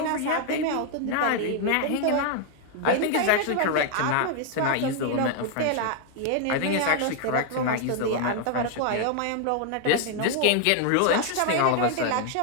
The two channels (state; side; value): different; both; correlation 0.00